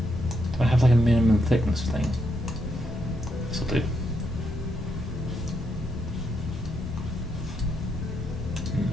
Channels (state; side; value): normal; both; correlation 0.79